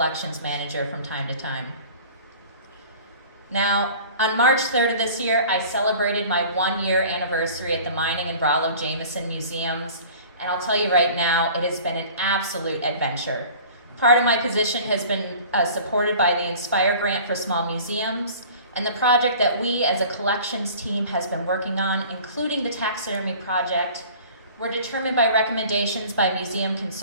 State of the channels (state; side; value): inverted; both; correlation -0.45